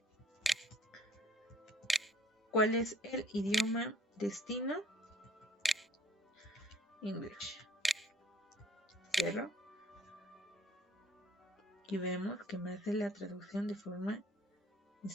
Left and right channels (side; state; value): both; normal; correlation 0.57